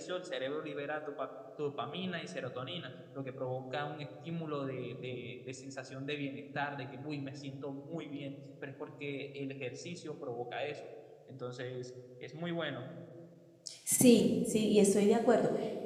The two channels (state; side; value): identical; both; correlation 1.00